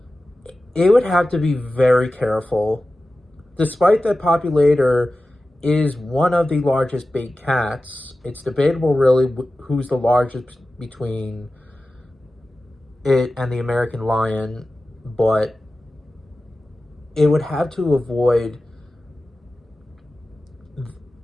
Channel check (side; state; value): both; normal; correlation 0.94